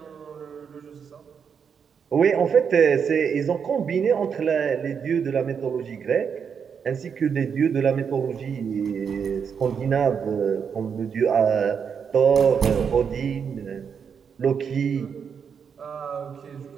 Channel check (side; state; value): left; quieter; 6.8 dB